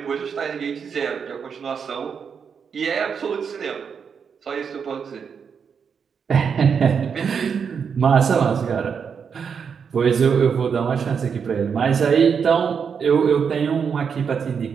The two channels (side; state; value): left; quieter; 6.6 dB